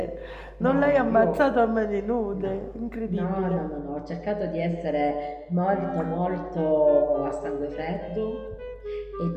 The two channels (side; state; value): both; identical; correlation 1.00